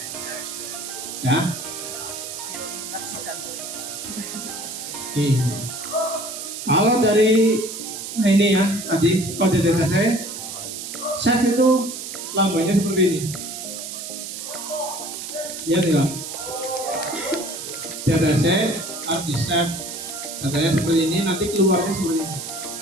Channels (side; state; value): right; noise; hiss, 8 dB below the sound